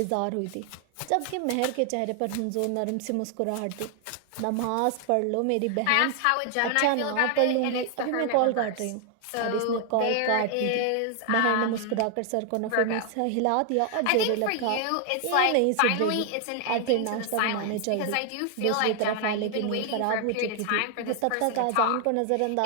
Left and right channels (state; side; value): different; both; correlation 0.00